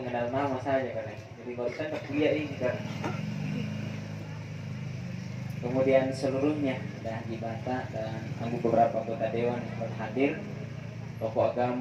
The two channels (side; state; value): both; identical; correlation 1.00